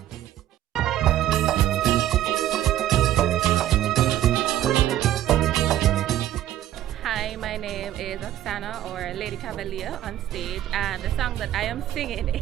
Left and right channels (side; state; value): left; quieter; 12.7 dB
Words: Hi, my name is Oksana, or Lady Cavalier, on stage, and the song that I am singing